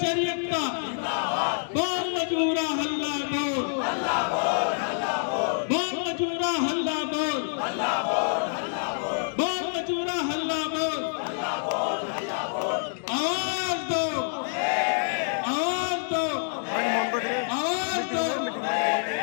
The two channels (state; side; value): silent; right; 60 dB below the other